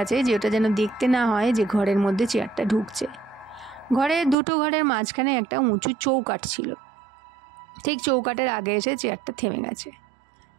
আছে যে ওটা যেন দেখতে না হয় যে ঘরের মধ্যে চেয়ারটা ঢুকছে। দুটো ঘরের মাঝখানে একটা উঁচু চৌকাঠ ছিল। ঠিক চৌকাঠের আগে এসে চেয়ারটা থেমে গেছে।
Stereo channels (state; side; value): drops out; left; at 4.4 s